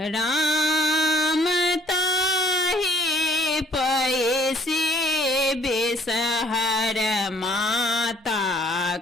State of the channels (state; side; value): normal; both; correlation 0.59